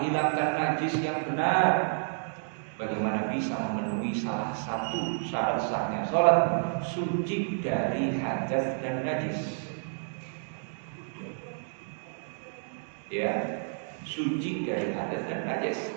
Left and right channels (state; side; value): silent; left; digital silence